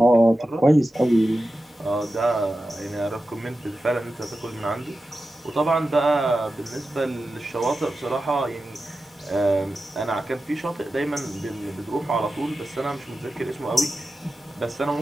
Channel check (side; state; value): both; normal; correlation 0.93